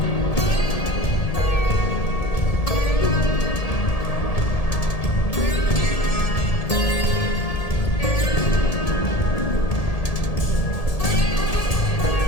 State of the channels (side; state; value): right; late; 1.7 ms